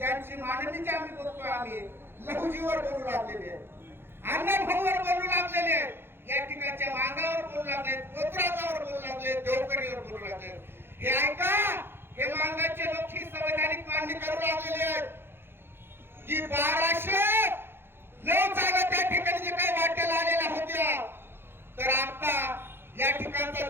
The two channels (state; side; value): late; left; 0.11 ms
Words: माननीची आम्ही बोलतो, आम्ही लघुजीवर बोलू लागलेले, अन्नभाऊवर बोलू लागलेले, या ठिकाणच्या मांगावर बोलू लागले, कोतराजावर बोलू लागले, देवकरीवर बोलू लागले. हे ऐका, हे मांगाचे लोक ही संवैधानिक मांडणी करू लागलेले आहेत की 1209 जागा त्या ठिकाणी जे काही वाट्याला आलेल्या होत्या, तर आता या ठिकाणचा